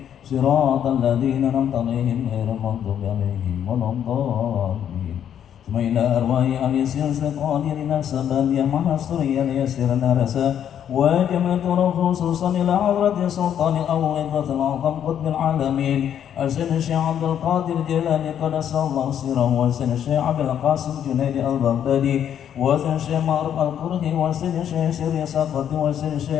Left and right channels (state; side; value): quieter; right; 9.5 dB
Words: siratal ladzina an'amta 'alaihim ghairil maghdubi 'alaihim waladdallin. Tsumma ila arwahi al-yasir al-qadirin as-sabaliyah mahasuriya yasirna rasa وجمعت خصوصا إلى حضرة سلطان الأول الأعظم قطب العالمين السيد الشيخ عبد القادر الجيلاني قدس الله سره والسيد الشيخ عبد القاسم جنيد البغدادي وسيد الشيخ معروف القرهي وسيد الشيخ سيري سقط وسيد